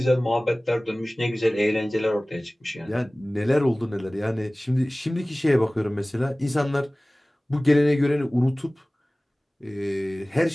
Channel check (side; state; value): both; normal; correlation 0.98